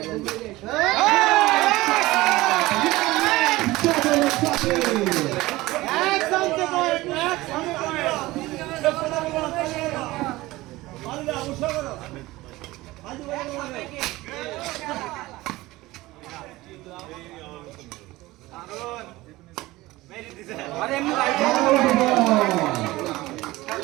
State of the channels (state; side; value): quieter; left; 19.0 dB